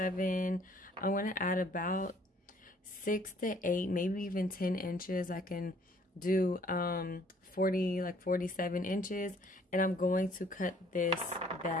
I'm going to add about 6 to 8, maybe even 10 inches. I can do 47 inches, and I'm going to cut this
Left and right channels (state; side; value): normal; both; correlation 0.60